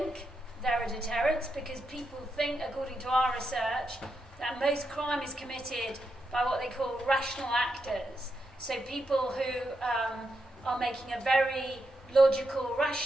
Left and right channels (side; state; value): both; normal; correlation 0.84